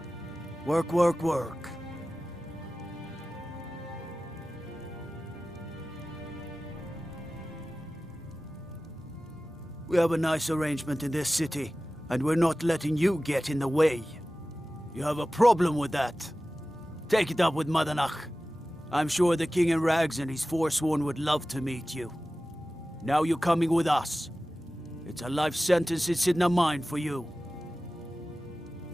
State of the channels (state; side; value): normal; both; correlation 0.96